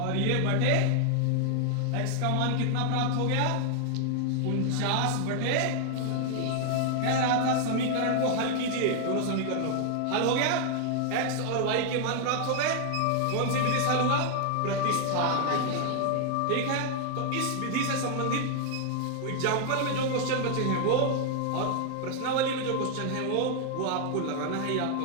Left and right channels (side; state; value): both; different; correlation 0.00